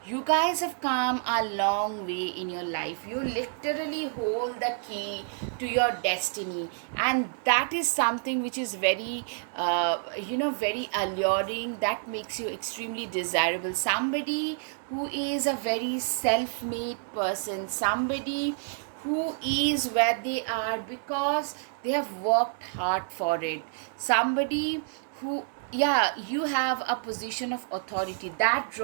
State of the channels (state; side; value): silent; left; digital silence